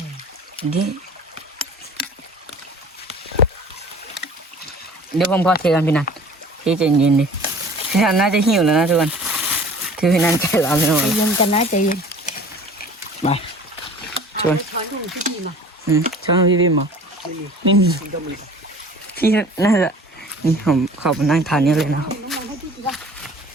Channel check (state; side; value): normal; both; correlation 0.46